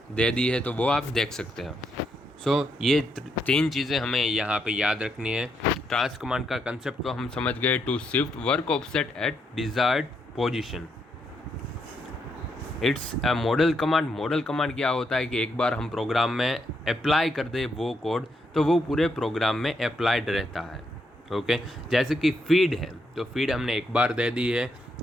दे दी है, तो वो आप देख सकते हो। सो ये 3 चीज़ें हमें यहाँ पे याद रखनी है। ट्रांस कमांड का कंसेप्ट तो हम समझ गए, to shift work offset at desired position. It's a model command. Model command क्या होता है कि एक बार हम प्रोग्राम में अप्लाई कर दे वो कोड, तो वो पूरे प्रोग्राम में अप्लाइड रहता है। ओके, जैसे कि फीड है, तो फीड हमने एक बार दे दी है,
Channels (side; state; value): both; normal; correlation 0.78